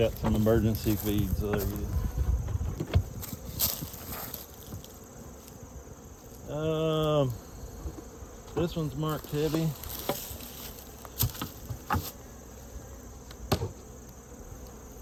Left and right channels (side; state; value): both; identical; correlation 1.00